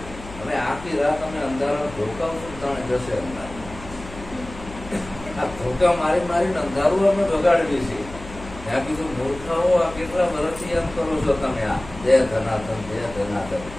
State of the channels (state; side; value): noise; left; hum, 15 dB below the sound